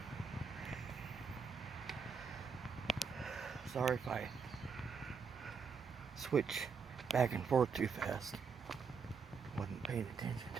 Sorry if I switch back and forth too fast. Wasn't paying attention.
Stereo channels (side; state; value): left; quieter; 5.7 dB